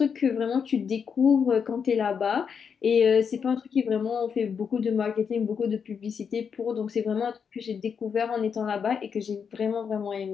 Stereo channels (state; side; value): quieter; right; 6.7 dB